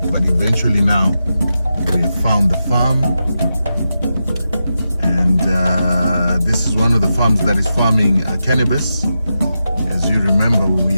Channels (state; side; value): inverted; both; correlation -0.89